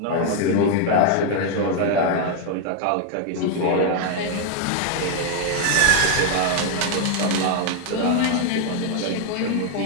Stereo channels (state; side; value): different; both; correlation 0.00